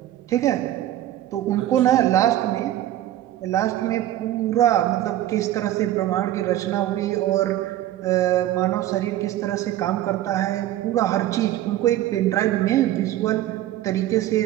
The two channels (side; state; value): left; quieter; 13.5 dB